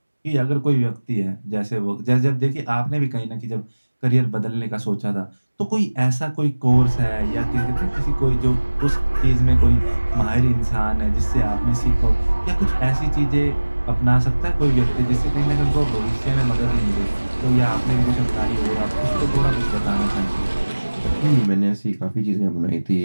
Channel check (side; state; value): both; inverted; correlation -1.00